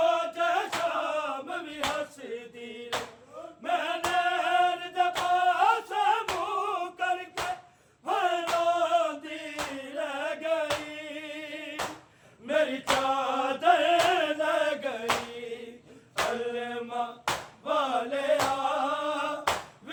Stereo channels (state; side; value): identical; both; correlation 1.00